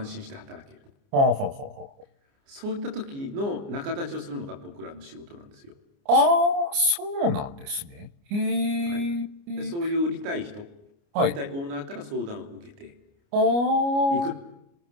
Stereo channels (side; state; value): left; late; 29 ms